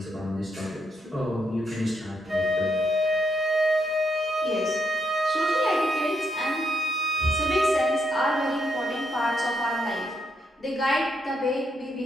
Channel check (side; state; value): both; normal; correlation 0.78